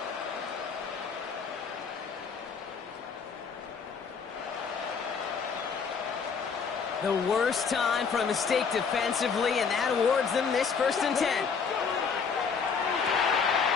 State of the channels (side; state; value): right; quieter; 5.9 dB